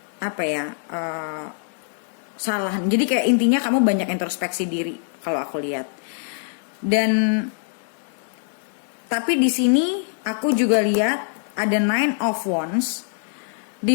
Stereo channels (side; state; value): right; silent; 63 dB below the other